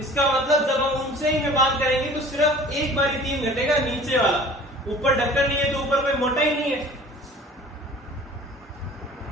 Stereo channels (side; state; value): both; normal; correlation 0.46